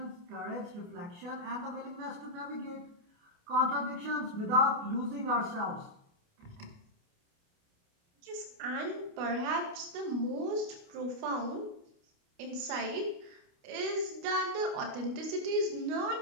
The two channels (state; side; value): late; left; 29 ms